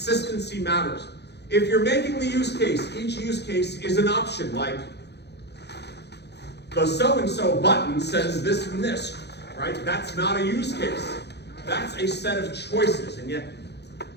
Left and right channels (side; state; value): right; late; 0.49 ms